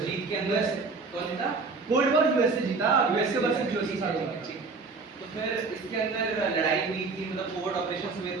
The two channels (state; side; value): quieter; left; 4.2 dB